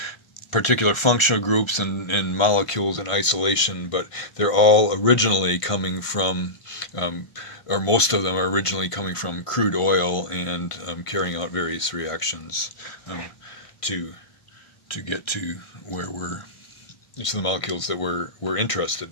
particular functional groups and molecules in isolation, but they're all originally coming from, or most of them are originally coming from crude oil, and carrying out various reactions to get to where we're, to the molecules that we're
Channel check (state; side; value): late; right; 1.5 ms